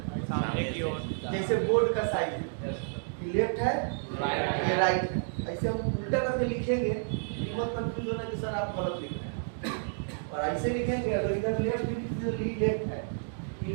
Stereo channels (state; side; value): silent; left; digital silence